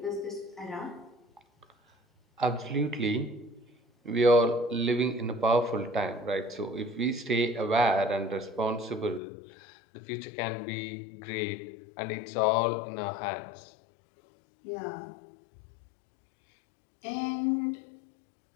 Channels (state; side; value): drops out; right; at 9.2 s